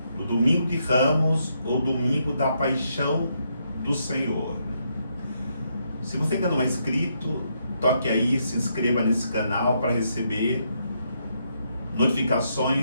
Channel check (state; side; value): inverted; both; correlation -0.77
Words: do Domingo de Ramos ou Domingo da Paixão do Senhor. Se você ainda não é inscrito, toque aí, se inscreva nesse canal para receber